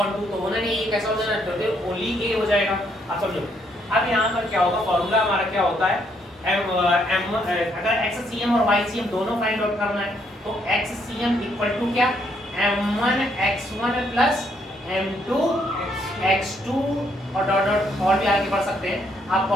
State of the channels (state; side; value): normal; both; correlation 0.72